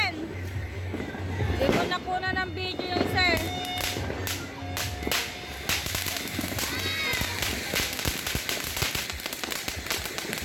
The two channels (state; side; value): identical; both; correlation 1.00